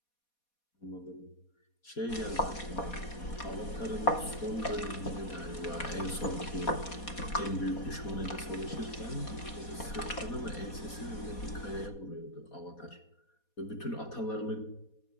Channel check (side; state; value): right; late; 4.2 ms